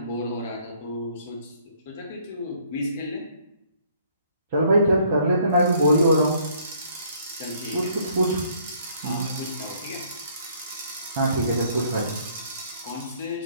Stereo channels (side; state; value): both; inverted; correlation -0.63